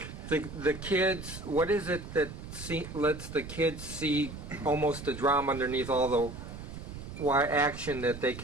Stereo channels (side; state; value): right; noise; rumble, 11 dB below the sound